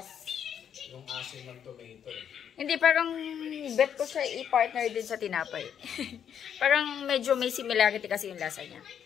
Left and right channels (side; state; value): right; quieter; 8.6 dB